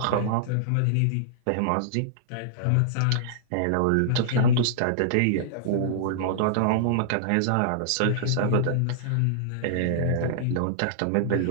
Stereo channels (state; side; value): different; both; correlation -0.02